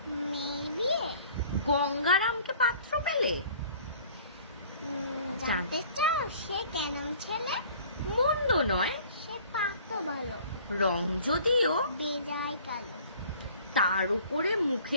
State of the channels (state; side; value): inverted; both; correlation -0.51